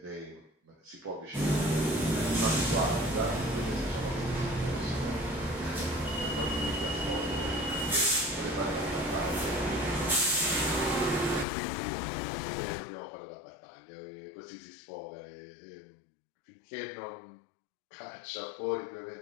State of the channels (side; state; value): right; drops out; at 11.5 s